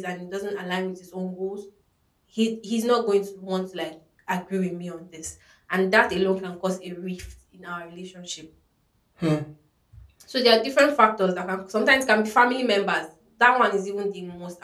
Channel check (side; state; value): both; identical; correlation 1.00